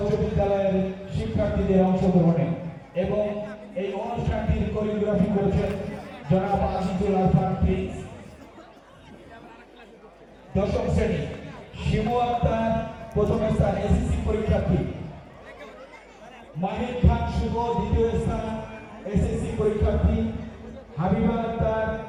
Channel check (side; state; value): both; identical; correlation 1.00